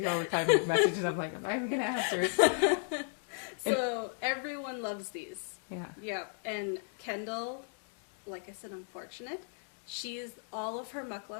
all the time with messages. I'm like, I'm not even gonna answer. So everyone loves these. Yeah. Yeah. And Kendall, like I said, I'm fortunate. All of her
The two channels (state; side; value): silent; right; 55 dB below the other